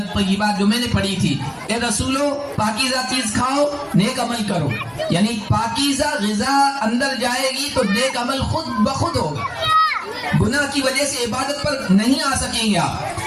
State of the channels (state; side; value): identical; both; correlation 1.00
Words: جو میں نے پڑھی تھی، اے رسولو پاکیزہ چیز کھاؤ، نیک عمل کرو، یعنی پاکیزہ غذا اندر جائے گی تو نیک عمل خود بخود ہوگا، گناہ کی وجہ سے عبادت پر نہیں آ سکیں گے